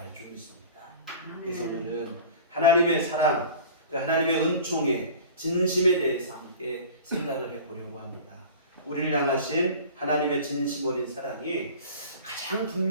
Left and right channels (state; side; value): inverted; both; correlation -0.39